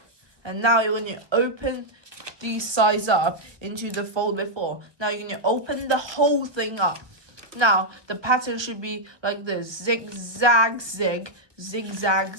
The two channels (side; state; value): left; late; 1.2 ms